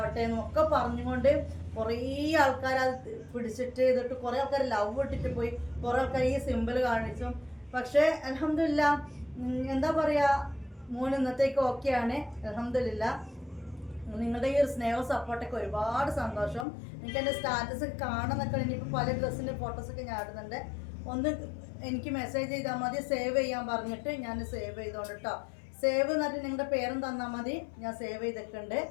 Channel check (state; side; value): drops out; right; at 16.7 s